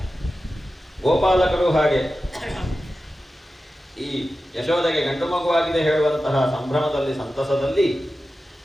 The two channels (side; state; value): both; normal; correlation 0.93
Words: ಗೋಪಾಲಕರು ಹಾಗೆ ಈ ಯಶೋದೆಗೆ ಗಂಡು ಮಗುವಾಗಿದೆ ಹೇಳುವಂತಹ ಸಂಭ್ರಮದಲ್ಲಿ ಸಂತಸದಲ್ಲಿ